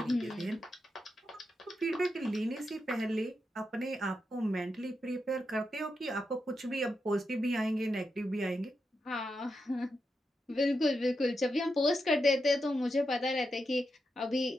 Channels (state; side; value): normal; both; correlation 0.86